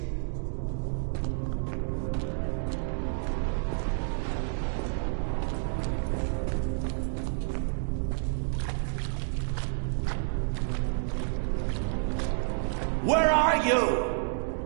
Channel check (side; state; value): left; silent; digital silence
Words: Where are you?